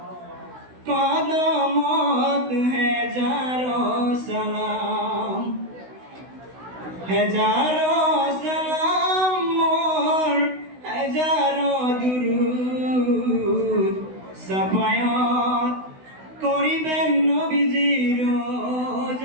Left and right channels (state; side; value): late; left; 16 ms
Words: কদমত হেজারো সালাম হেজারো সালাম মোর হেজারো দুরুদ সাফায়াত করিবেন নবীজি রোজ